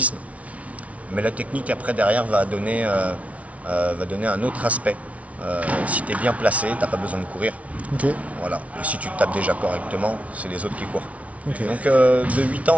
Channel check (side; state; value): left; late; 0.066 ms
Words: Mais la technique après derrière va donner un autre aspect. Si tu es bien placé, tu n'as pas besoin de courir. Ok. Voilà. Et si tu tapes déjà correctement, c'est les autres qui courent. Ok. Donc de 8